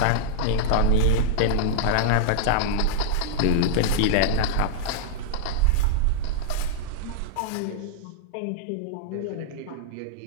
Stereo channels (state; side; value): different; both; correlation -0.02